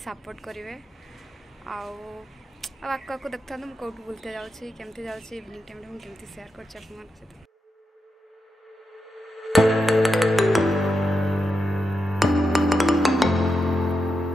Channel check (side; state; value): both; normal; correlation 0.87